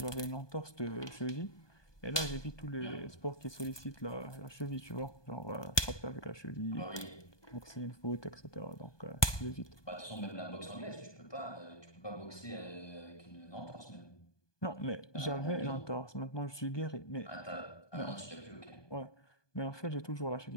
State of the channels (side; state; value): right; late; 1.2 ms